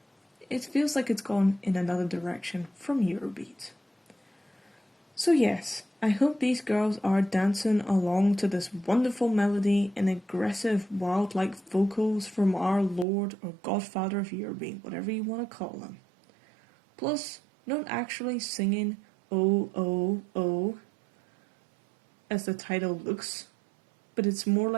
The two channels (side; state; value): left; drops out; at 13.1 s